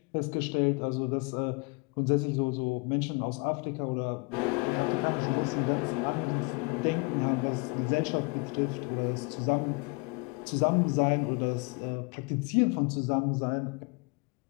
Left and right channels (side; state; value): right; quieter; 29.5 dB